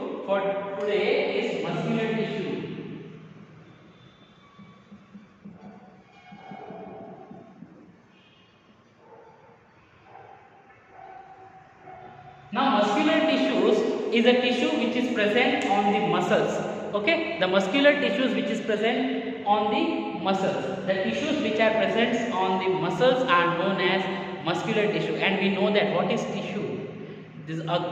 for today is muscular tissue. Now muscular tissues is a tissue which is present on the muscles. Okay, the muscular tissues which is present on the muscles. The tissues which are present on the muscles are known as muscular tissue, and we know that what is tissue? This is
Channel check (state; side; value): identical; both; correlation 1.00